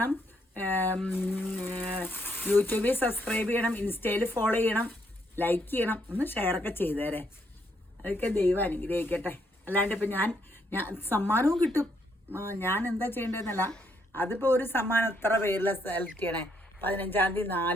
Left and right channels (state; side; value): normal; both; correlation 0.74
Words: യൂട്യൂബിൽ സബ്സ്ക്രൈബ് ചെയ്യണം, ഇൻസ്റ്റയിൽ ഫോളോ ചെയ്യണം, ലൈക്ക് ചെയ്യണം. ഒന്ന് ഷെയറൊക്കെ ചെയ്തേരെ. അതൊക്കെ ദൈവം അനുഗ്രഹിക്കട്ടെ. അല്ലാണ്ട് ഇപ്പം ഞാൻ സമ്മാനവും കിട്ടും. ഞാൻ എന്താ ചെയ്യേണ്ടതെന്നല്ല. അതിപ്പോൾ ഒരു സമ്മാനം എത്ര പേരിൽ സെലക്ട് ചെയ്യണേ? 15-ാം തീയതി